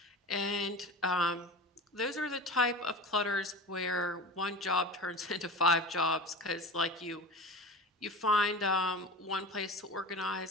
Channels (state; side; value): normal; both; correlation 0.32